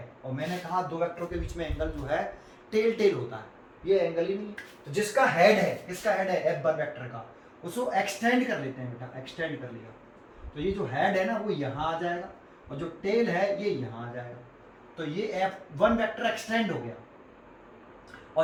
और मैंने कहा दो वेक्टरों के बीच में एंगल जो है टेल टेल होता है, ये एंगल ही नहीं है। तो जिसका हेड है, किसका हेड है F1 वेक्टर का, उसको एक्सटेंड कर लेते हैं बेटा, एक्सटेंड कर लिया तो ये जो हेड है ना वो यहाँ आ जाएगा और जो टेल है ये यहाँ आ जाएगा। तो ये F1 वेक्टर एक्सटेंड हो गया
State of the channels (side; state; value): both; identical; correlation 1.00